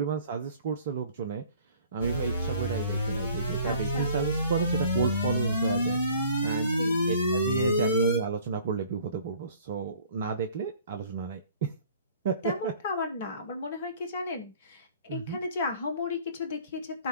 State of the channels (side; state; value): both; inverted; correlation -0.52